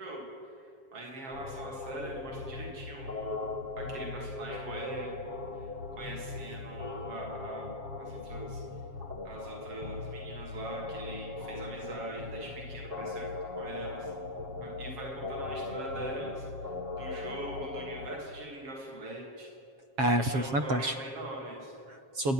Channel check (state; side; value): late; left; 7.4 ms